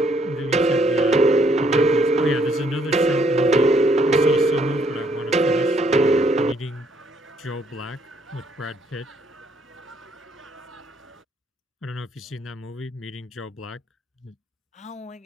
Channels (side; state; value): both; normal; correlation 0.68